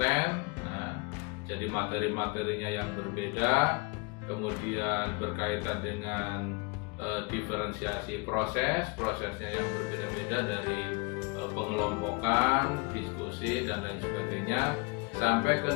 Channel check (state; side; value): quieter; right; 28.7 dB